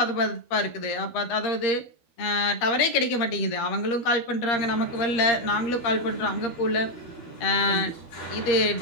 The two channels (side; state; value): right; late; 12 ms